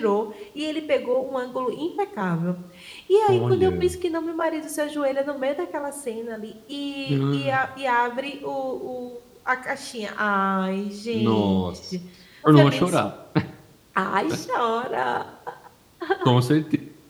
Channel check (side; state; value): both; identical; correlation 1.00